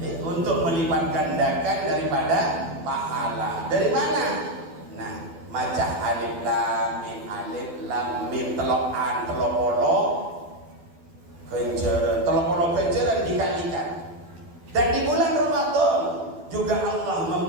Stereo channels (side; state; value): left; late; 12 ms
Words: gandakan daripada pahala. Dari mana? Nah, maca alif lam mim telokan telopolo kenjeran dikalikan. Dan di bulan Ramadan juga Allah